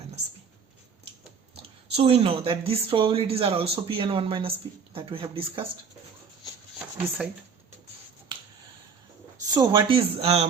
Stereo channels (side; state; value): left; quieter; 6.0 dB